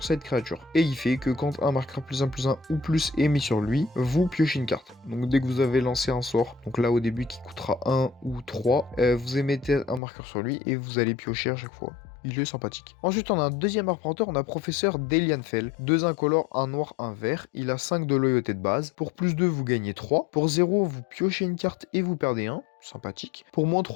cette créature. Et il fait que quand un marqueur +1/+1 ou plus est mis sur lui, vous piochez une carte. Donc dès que vous avez lancé un sort, donc là au début qui coûtera 1 ou 3, vous émettez un marqueur sur lui et vous allez piocher à chaque fois. Il est sympathique. Ensuite, on a un deuxième arpenteur, on a Professeur Delianfell. 2 incolores, un noir, un vert. Il a 5 de loyauté de base. Pour +2, vous gagnez 3. Pour 0, vous piochez une carte et vous perdez 1. Sympathique. Pour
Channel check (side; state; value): right; drops out; at 10.0 s